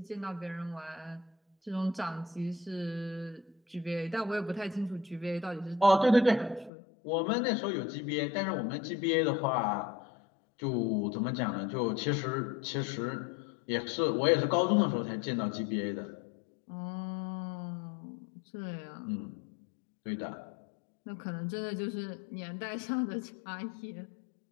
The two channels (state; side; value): drops out; right; at 6.7 s